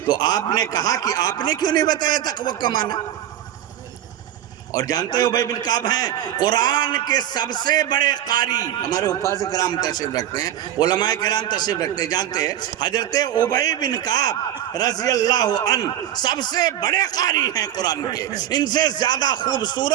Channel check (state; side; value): quieter; left; 11.8 dB